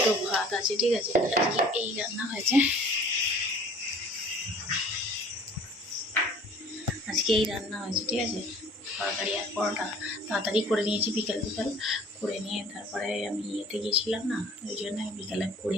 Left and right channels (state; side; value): normal; both; correlation 0.50